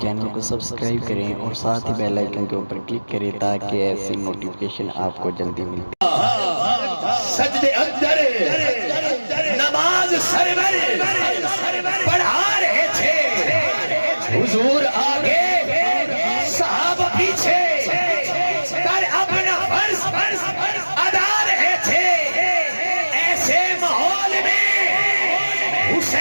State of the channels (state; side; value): inverted; both; correlation -1.00